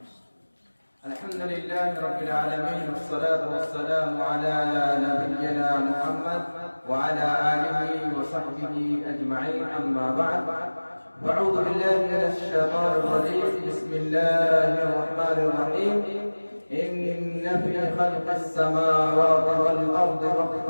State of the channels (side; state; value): both; inverted; correlation -1.00